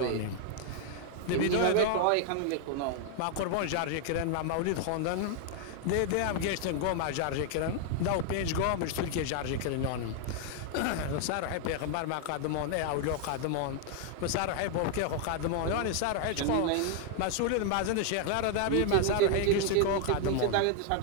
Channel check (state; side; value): different; both; correlation 0.00